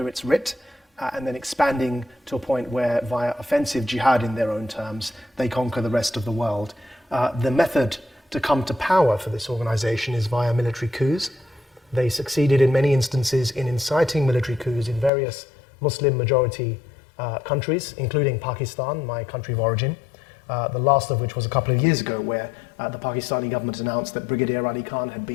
its writ, and then expanding to a point where, via offensive jihad in their own terms, they conquer the rest of the world. The method to come to power for this organization is via military coups. They succeeded in many instances in inciting military coups in various Muslim majority countries, including Pakistan, my country of origin. The last of which was a couple of years ago, where the Pakistani government announced that Brigadier Ali Khan had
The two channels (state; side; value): drops out; right; at 15.1 s